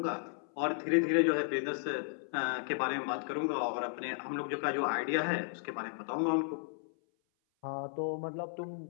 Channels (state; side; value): silent; right; 55 dB below the other